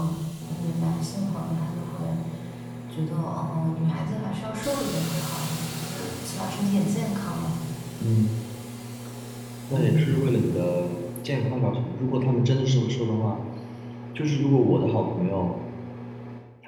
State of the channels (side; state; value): both; identical; correlation 1.00